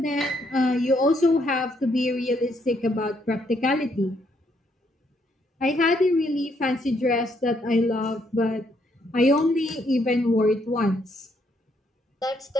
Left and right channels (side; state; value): both; normal; correlation 0.72